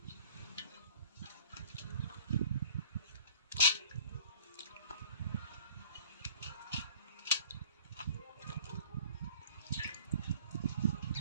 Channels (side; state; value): both; inverted; correlation -0.49